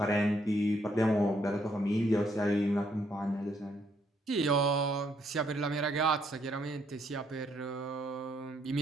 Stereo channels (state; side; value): normal; both; correlation 0.71